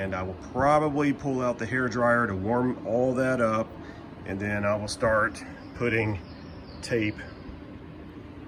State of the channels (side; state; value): both; identical; correlation 1.00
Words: I will probably pull out the hair dryer to warm all that up, and then I will start putting tape